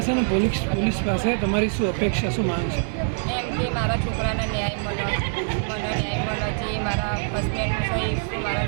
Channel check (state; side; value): silent; left; digital silence